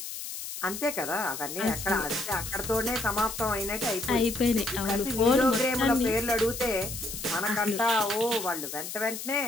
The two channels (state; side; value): noise; left; hiss, 8 dB below the sound